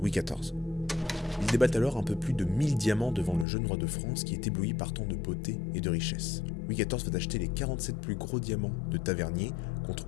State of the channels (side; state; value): right; drops out; at 3.5 s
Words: Louis XIV. Il débat alors un peu plus de 1000 diamants devant le jeune roi de France qui est ébloui par tant de beauté et de richesse. Louis XIV va acheter les 47 plus gros diamants de Tavernier contre